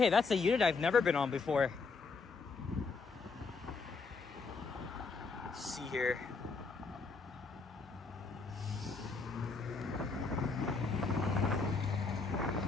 that's a unit I've never been on before. Let's see here.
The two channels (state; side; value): quieter; right; 4.4 dB